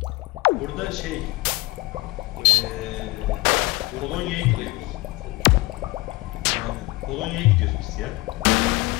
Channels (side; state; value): right; quieter; 21.6 dB